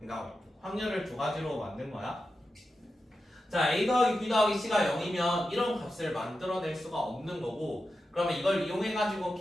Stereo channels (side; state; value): both; normal; correlation 0.90